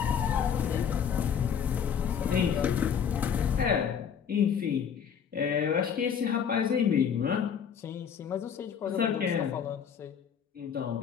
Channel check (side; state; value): right; quieter; 7.6 dB